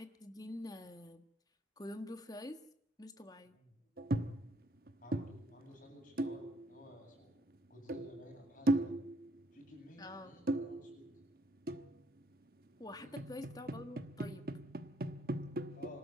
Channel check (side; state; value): both; normal; correlation 0.68